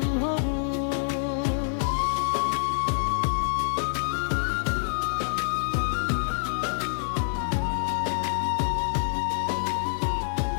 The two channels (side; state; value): right; silent; 60 dB below the other